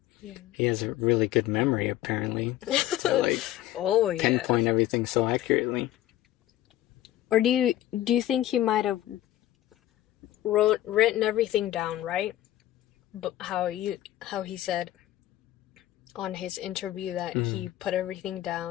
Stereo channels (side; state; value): right; quieter; 14.0 dB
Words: he has a really good memory apparently to like pinpoint everything so accurately. Or do you think he might have written everything down, right? But how he said on his interview that he put everything